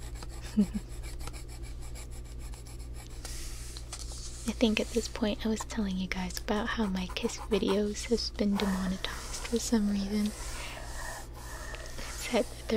I think at this point I was telling you guys about how my kiss videos has been demonetized for some reason. It said that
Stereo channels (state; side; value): identical; both; correlation 1.00